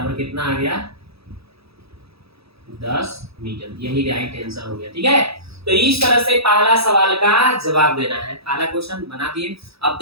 कितना आ गया 10 मीटर। यही राइट आंसर हो गया। ठीक है, तो इस तरह से पहला सवाल का जवाब देना है। पहला क्वेश्चन बना दिए, अब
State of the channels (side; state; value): left; late; 0.77 ms